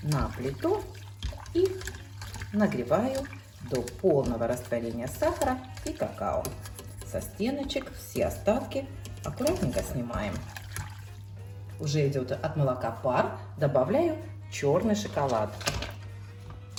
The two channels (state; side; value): identical; both; correlation 1.00